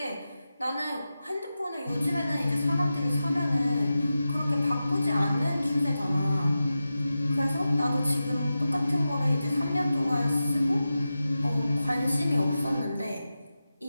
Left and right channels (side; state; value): both; inverted; correlation -0.93